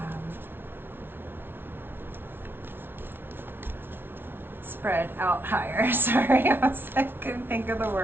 spread out higher. Sorry, I couldn't think of the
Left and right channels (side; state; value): left; late; 0.11 ms